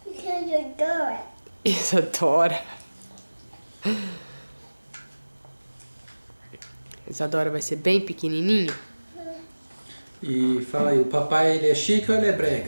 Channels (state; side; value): inverted; both; correlation -1.00